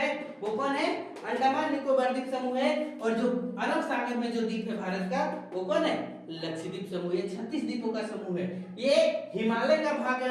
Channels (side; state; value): both; identical; correlation 1.00